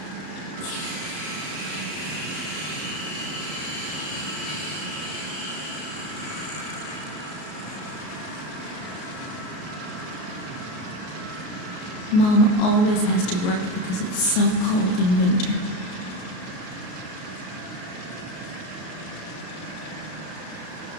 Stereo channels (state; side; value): late; right; 33 ms